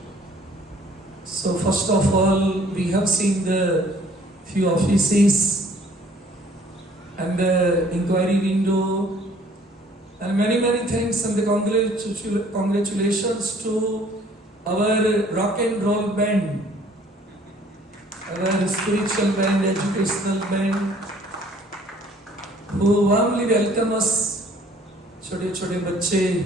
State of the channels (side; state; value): both; normal; correlation 0.57